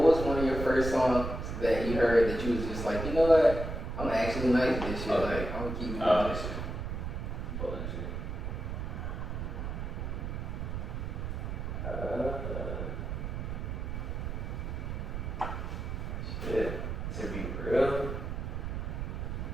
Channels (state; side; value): noise; right; rumble, 4 dB below the sound